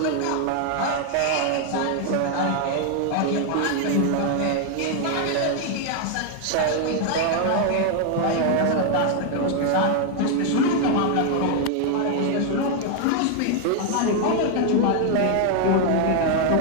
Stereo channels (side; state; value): both; different; correlation 0.00